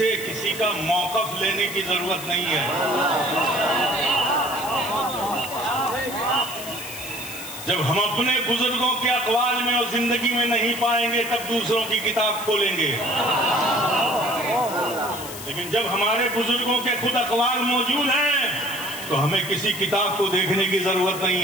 کسی کا موقف لینے کی ضرورت نہیں ہے. جب ہم اپنے بزرگوں کے اقوال میں اور زندگی میں نہیں پائیں گے تب دوسروں کی کتاب کھولیں گے. لیکن جب ہمارے بزرگوں کے خود اقوال موجود ہیں تو ہمیں کسی کتاب کو دیکھنے کی ضرورت نہیں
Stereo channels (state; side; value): noise; left; hiss, 11 dB below the sound